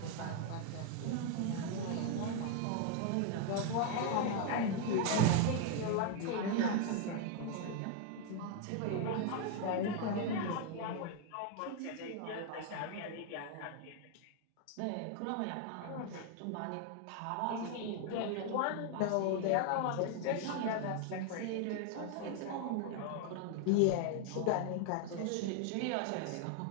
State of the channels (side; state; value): both; different; correlation 0.00